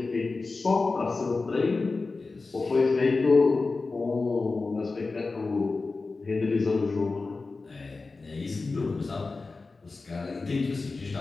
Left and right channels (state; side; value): quieter; right; 3.8 dB